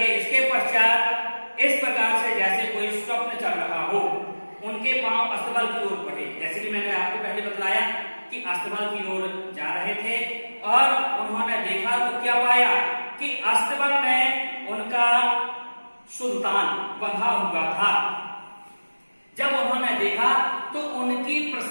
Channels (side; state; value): both; inverted; correlation -1.00